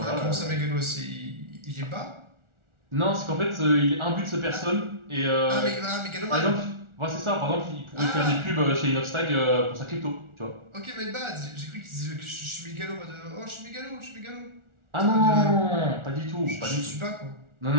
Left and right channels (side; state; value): left; late; 1.4 ms